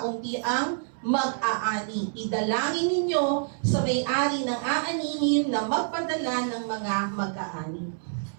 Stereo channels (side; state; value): left; silent; 60 dB below the other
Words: ang mag-aani. Idalangin ninyo sa may-ari ng aanihin na magpadala ng mga mag-aani.